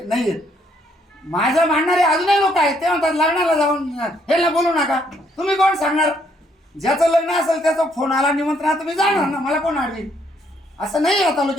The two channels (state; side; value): normal; both; correlation 0.70